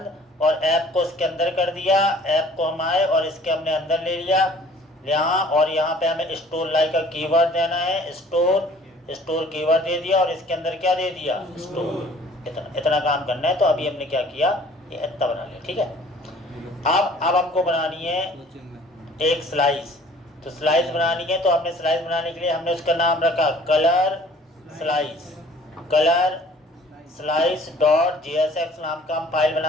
और ऐप को इसके अंदर कर दिया। ऐप को हम आए और इसके हमने अंदर ले लिया यहाँ, और यहाँ पे हमें स्टोर लाइक का कीवर्ड देना है, स्टोर कीवर्ड दे दिया, और इसके अंदर क्या दे दिया, स्टोर। इतना काम करना है। तो अभी हमने क्या किया, ये इतना बना लिया, ठीक है। अब हमको बनानी है एक स्लाइस। तो स्लाइस बनानी है, तो हमने स्लाइस बनाने के लिए हमने उसका नाम रखा कलर स्लाइस.jsx नाम का हम फाइल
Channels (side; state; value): both; normal; correlation 0.53